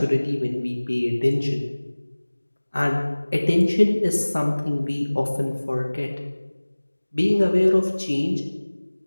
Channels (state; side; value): inverted; both; correlation -1.00